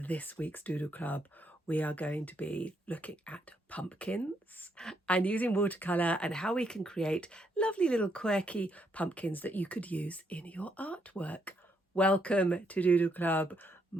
this week's Doodle Club, we are going to be looking at pumpkins and using watercolour and how we can create lovely little quirky pumpkins that you could use in your artwork. Welcome to Doodle Club.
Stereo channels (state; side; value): normal; both; correlation 0.75